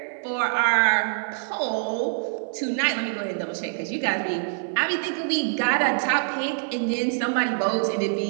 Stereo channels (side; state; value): left; silent; 62 dB below the other